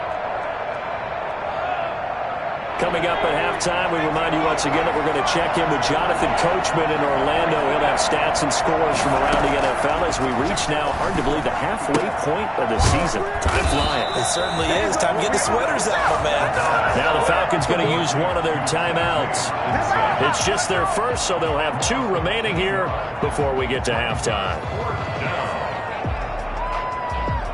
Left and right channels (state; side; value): identical; both; correlation 1.00